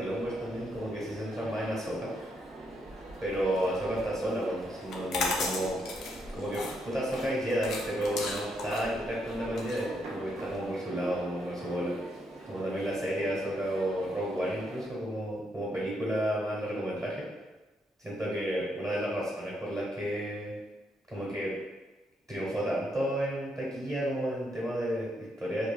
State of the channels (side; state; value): both; normal; correlation 0.77